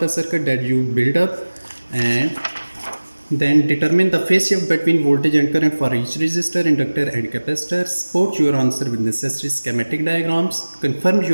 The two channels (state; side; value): inverted; both; correlation -1.00